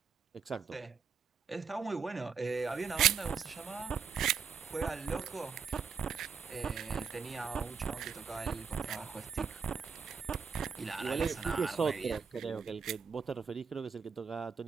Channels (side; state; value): left; quieter; 6.2 dB